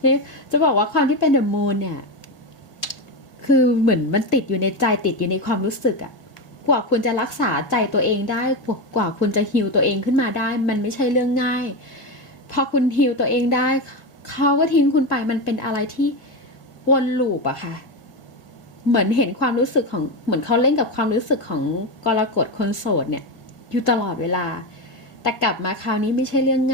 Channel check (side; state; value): right; late; 1.6 ms